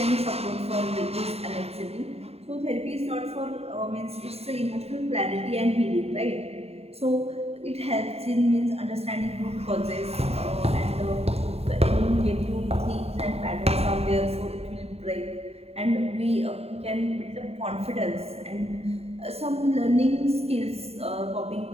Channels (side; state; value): left; late; 0.30 ms